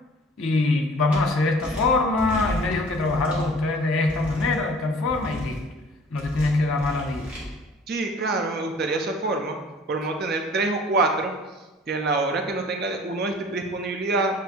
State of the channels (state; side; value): normal; both; correlation 0.49